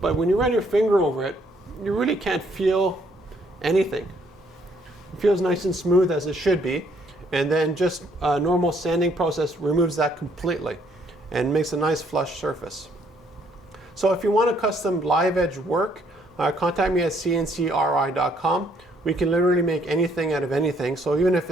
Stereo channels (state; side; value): normal; both; correlation 0.68